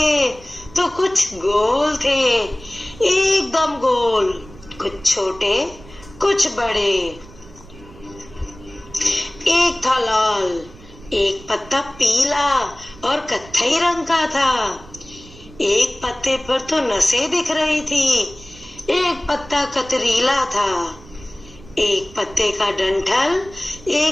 तो कुछ गोल थे, एकदम गोल। कुछ छोटे, कुछ बड़े। एक था लाल, एक पत्ता पीला और कत्थई रंग का था। एक पत्ते पर तो नसें दिख रही थी। एक पत्ता कतरीला था। एक पत्ते का डंठल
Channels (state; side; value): noise; right; rumble, 20 dB below the sound